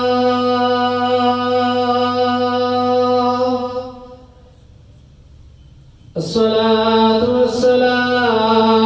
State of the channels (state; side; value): identical; both; correlation 1.00